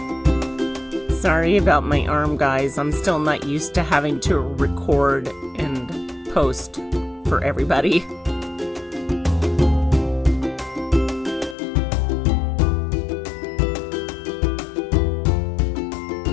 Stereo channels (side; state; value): right; drops out; at 11.6 s